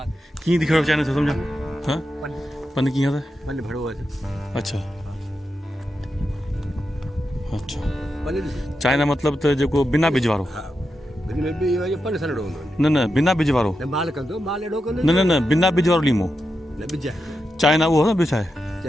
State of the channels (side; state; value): both; normal; correlation 0.88